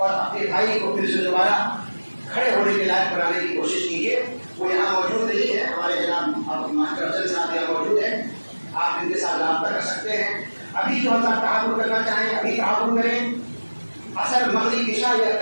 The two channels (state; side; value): inverted; both; correlation -1.00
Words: اپنے بھائی کو پھر سے دوبارہ کھڑے ہونے کے لائق بنانے کی کوشش کیجیے۔ وہ یہاں موجود نہیں ہے، ہمارے جناب آپ ماسٹر افضل صاحب یہاں موجود ہیں، آپ ان کے ساتھ رابطہ کر سکتے ہیں۔ ابھی جو حضرات تعاون کرنا چاہیں ابھی تعاون کریں، اثر مغرب عشاء یا